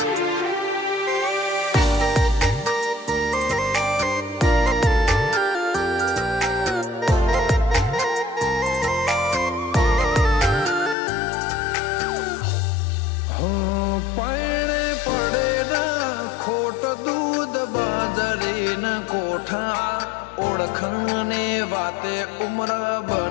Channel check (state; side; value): drops out; right; at 11.0 s